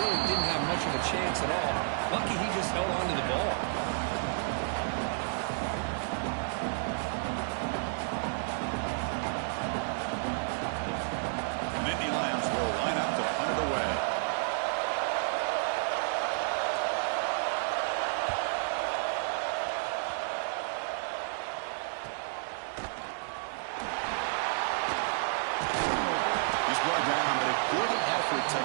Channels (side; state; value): left; silent; digital silence